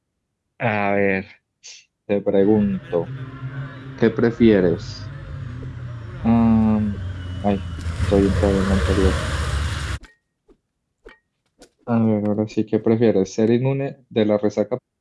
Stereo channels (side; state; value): both; identical; correlation 1.00